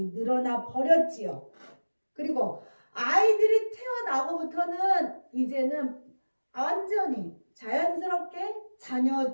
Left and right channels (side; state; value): both; inverted; correlation -1.00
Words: 늘어나 버렸지요. 그리고 아이들이 태어나고부터는 이제는 완전히 자연스럽게 자녀